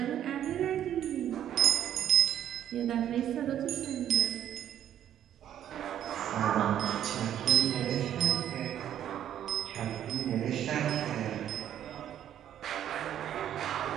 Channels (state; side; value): quieter; left; 10.7 dB